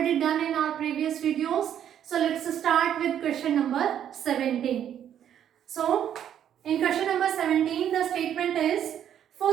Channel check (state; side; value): quieter; left; 9.9 dB